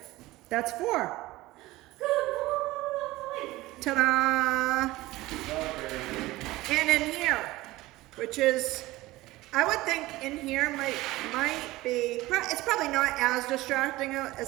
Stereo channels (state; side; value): quieter; left; 18.6 dB